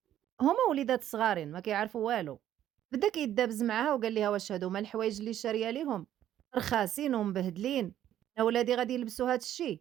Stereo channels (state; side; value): quieter; left; 11.6 dB